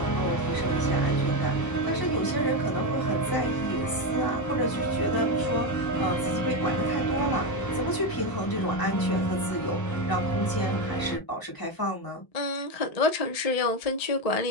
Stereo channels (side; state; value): right; late; 1.0 ms